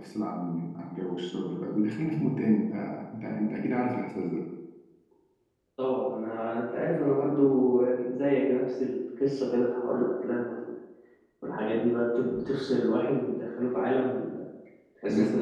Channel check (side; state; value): both; identical; correlation 1.00